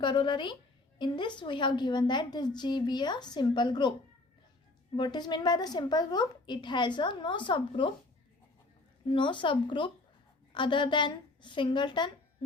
In this we have given that this G be a simple group. What is meant by the simple group? It has a no subgroup other than singleton,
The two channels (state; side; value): quieter; right; 3.0 dB